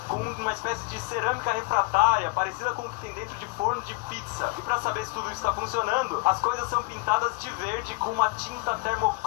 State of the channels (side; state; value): right; quieter; 26.3 dB